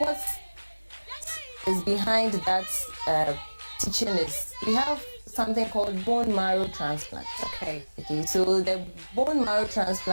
is behind that teaching is we have something called bone marrow transplant. Okay, so the bone marrow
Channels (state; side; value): inverted; both; correlation -1.00